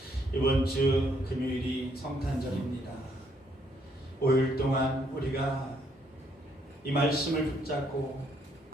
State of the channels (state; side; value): normal; both; correlation 0.70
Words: 이번 주 금요일이 성탄절입니다. 5일 동안 우리가 이 말씀을 붙잡고